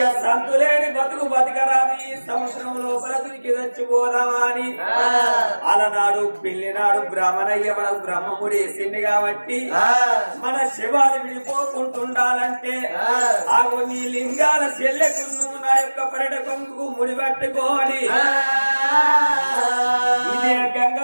సంతులేని బతుకు బతకరాని ఈ సంవత్సరం లోపల దునికి చచ్చిపోదామా అని అలనాడు పెళ్లినాడు బ్రాహ్మణయ్య మనకు బ్రహ్మముడి వేసింది కాబట్టి మన శివాలు విడిపోకుంటుండాలంటే ఆగు నీ లింగాల చెల్లెకు నువ్వు నా యొక్క పర్యట కొంగు ముడిపెట్టుకోని ఇదే గంగ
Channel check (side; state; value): both; inverted; correlation -1.00